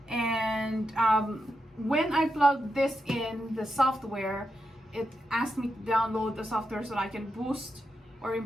and when I plugged this in the software, it asked me to download the software so I can boost or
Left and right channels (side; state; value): both; normal; correlation 0.86